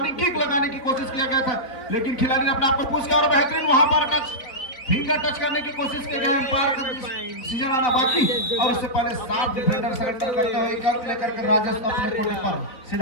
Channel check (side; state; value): right; late; 3.8 ms